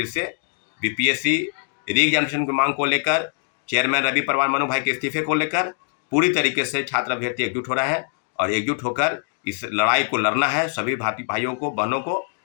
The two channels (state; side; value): silent; right; digital silence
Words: से बीपीएससी रीएग्जामिनेशन की मांग को लेकर, चेयरमैन रवि परवार मनु भाई के इस्तीफे को लेकर पूरी तरीके से छात्र अभ्यर्थी एकजुट हो रहे हैं, और एकजुट होकर इस लड़ाई को लड़ना है। सभी भाइयों को, बहनों को